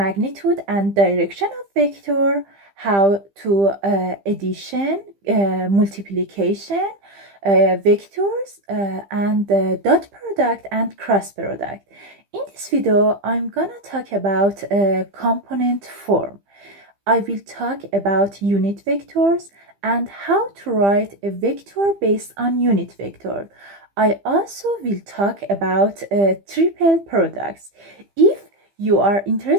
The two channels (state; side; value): late; left; 15 ms